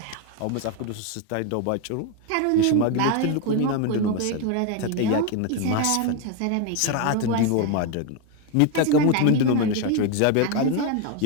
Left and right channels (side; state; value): both; different; correlation 0.01